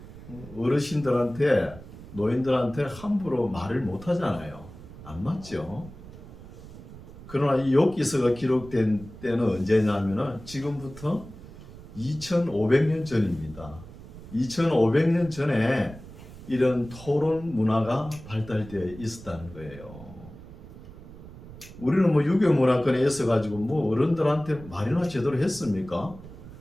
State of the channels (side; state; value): right; noise; rumble, 16 dB below the sound